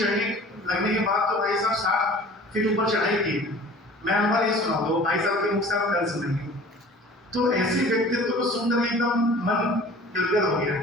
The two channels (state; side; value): normal; both; correlation 0.45